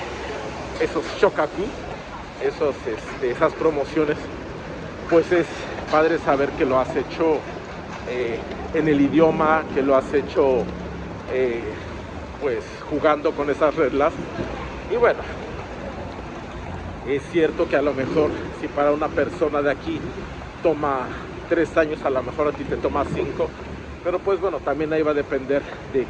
shokaku, esas promociones, pues es padre saber que lo has hecho en el idioma, que lo has hecho pues jugando con esas reglas. Y bueno, es cierto que a lo mejor si para una persona de aquí toma 3 años, a lo mejor a ti te toma 5, pero pues bueno, también ahí va a depender de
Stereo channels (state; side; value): identical; both; correlation 1.00